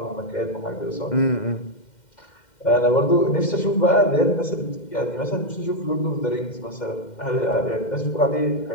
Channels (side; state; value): right; late; 2.1 ms